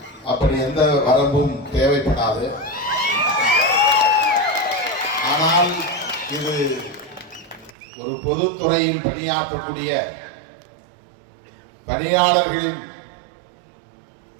அப்படி எந்த வரம்பும் தேவைப்படாது. ஆனால் இது ஒரு பொதுத்துறையில் பணியாற்றக்கூடிய பணியாளர்களின்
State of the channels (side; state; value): left; drops out; at 7.8 s